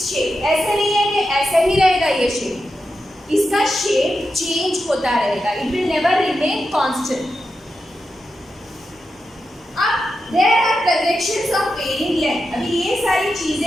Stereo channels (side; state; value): both; normal; correlation 0.88